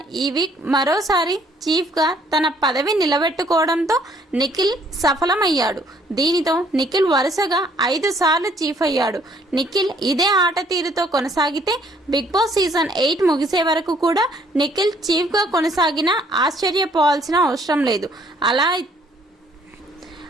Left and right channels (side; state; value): both; normal; correlation 0.63